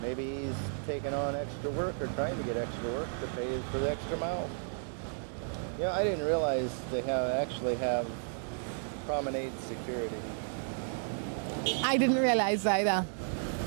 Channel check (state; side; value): silent; left; digital silence